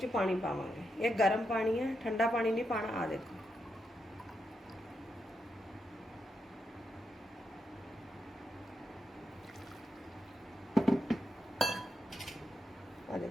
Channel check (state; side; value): normal; both; correlation 0.84